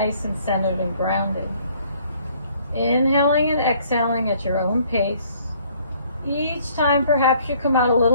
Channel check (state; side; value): inverted; both; correlation -0.61